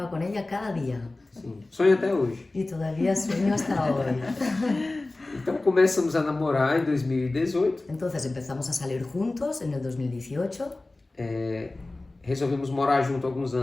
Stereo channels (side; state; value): right; quieter; 3.0 dB